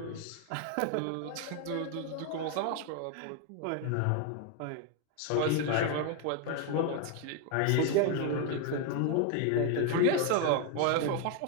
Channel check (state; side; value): different; both; correlation 0.01